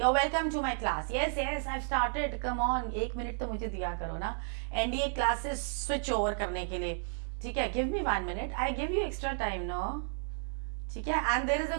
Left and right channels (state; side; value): silent; left; digital silence